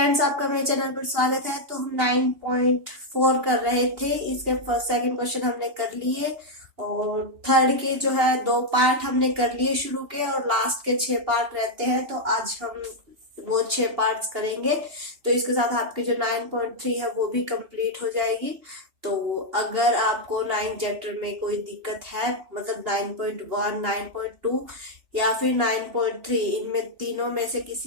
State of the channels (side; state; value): left; late; 2.8 ms